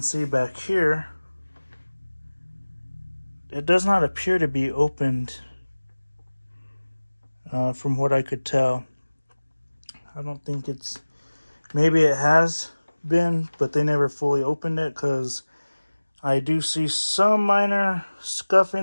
see back here, it does not appear to be opened from what I could tell. I don't think it's, maybe it has been, but they never fully opened it, because I do see some minor scuff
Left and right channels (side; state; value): both; inverted; correlation -1.00